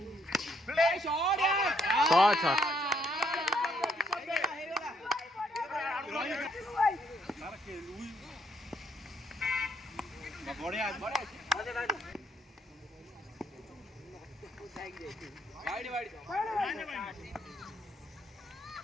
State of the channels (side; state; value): both; normal; correlation 0.70